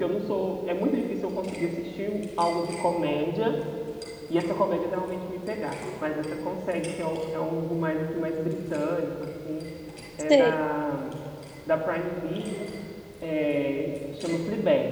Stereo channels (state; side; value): identical; both; correlation 1.00